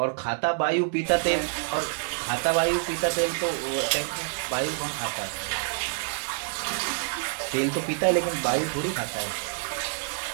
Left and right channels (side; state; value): left; silent; digital silence